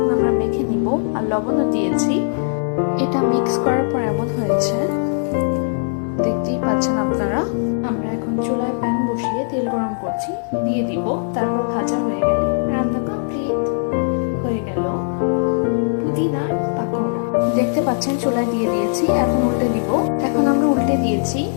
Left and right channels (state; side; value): silent; right; digital silence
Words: আমরা মেখে নিব। আর লবণও দিয়েছি। এটা মিক্স করার পর এমন হয়েছে, দেখতেই পাচ্ছেন আপনারা। আমরা এখন চুলায় প্যান বসিয়ে তেল গরম করছি, দিয়ে দিব। তারপর ভাজা হয়ে গেলে রান্না কমপ্লিট হয়ে গেল পুদিনার পাকোড়া। দেখতে পাচ্ছেন চুলায় দিয়ে দিয়েছি, এখন উল্টে দিব। এখন আমরা উল্টে দিয়েছি।